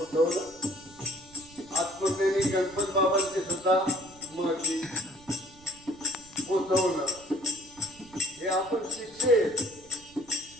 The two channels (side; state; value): right; noise; rumble, 24 dB below the sound